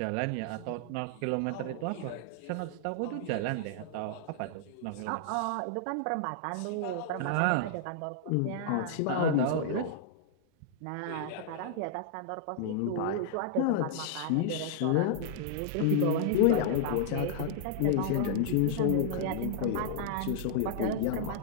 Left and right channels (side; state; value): both; different; correlation -0.01